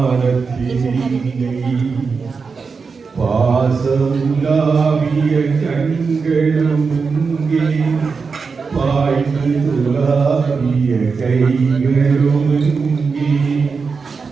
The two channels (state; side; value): quieter; left; 5.0 dB